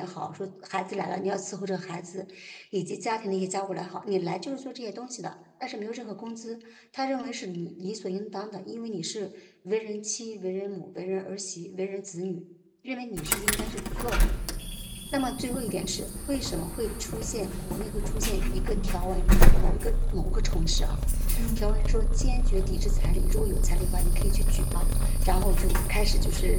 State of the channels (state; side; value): identical; both; correlation 1.00